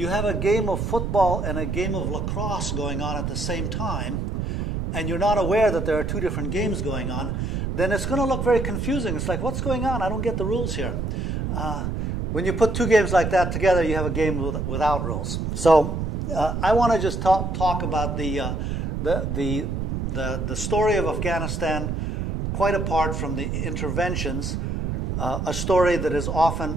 have a game of football and a game of lacrosse going on at the same time, and you're not aware that there are two different games going on, then it's going to look very confusing. It's like, what's going on? I don't get the rules here. When you put two games like that together, you have a game without rules. So I want to just talk about the story of Afghanistan, quite apart from the interventions, a story that is often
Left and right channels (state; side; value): noise; right; rumble, 2 dB below the sound